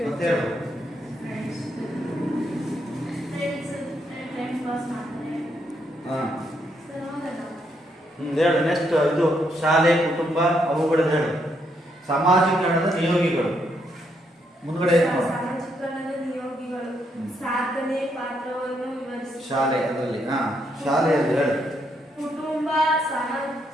ಮತ್ತೆ ಹೇಳು. ಹೇಳು ನೆಕ್ಸ್ಟ್. ಇದು ಶಾಲೆ, ಕುಟುಂಬ, ಅವುಗಳದ್ದು ಹೇಳು. ಸಮಾಜೀಕರಣದ ನಿಯೋಗಿಗಳು ಮುಂದ್ಗಡೆ ಸಮಾಜೀಕರಣದ ನಿಯೋಗಿಗಳು ಸಾಧನೆ ಪಾತ್ರವನ್ನು ವಿವರಿಸಿ. ಶಾಲೆ ಅದರಲ್ಲಿ ಶಾಲೆಯಲ್ಲಿ ಹೇಳು. ಕುಟುಂಬ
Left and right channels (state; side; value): normal; both; correlation 0.76